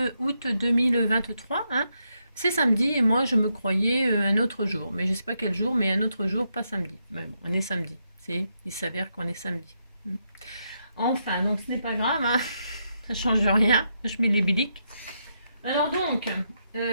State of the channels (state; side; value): inverted; both; correlation -0.81